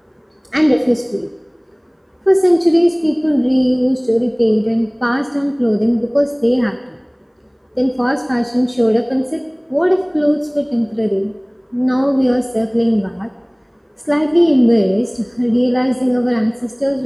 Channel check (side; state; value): both; identical; correlation 1.00